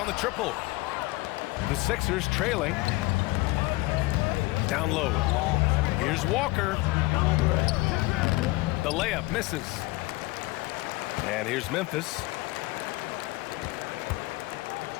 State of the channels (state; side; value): quieter; right; 21.7 dB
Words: the triple. The Sixers trailing. Down low. Here's Walker. The layup misses. And here's Memphis.